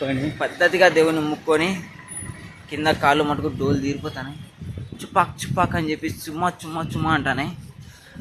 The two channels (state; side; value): identical; both; correlation 1.00